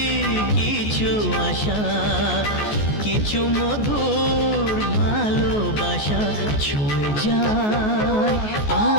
কিছু আশা, কিছু মধুর ভালোবাসা, ছুঁয়ে যায়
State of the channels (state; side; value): late; right; 14 ms